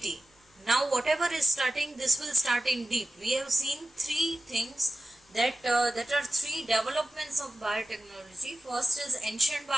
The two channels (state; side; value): normal; both; correlation 0.95